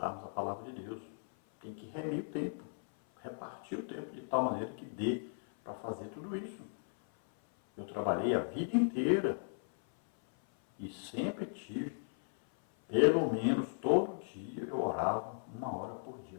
a palavra de Deus. Tem que remir o tempo, repartir o tempo de tal maneira que dê para fazer tudo isso. Eu trabalhei a vida inteira e sempre tive, pelo menos todo dia eu orava 1 hora por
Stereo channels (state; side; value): silent; right; 54 dB below the other